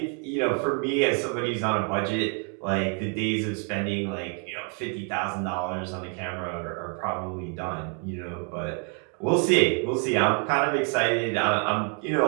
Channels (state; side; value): quieter; left; 39.7 dB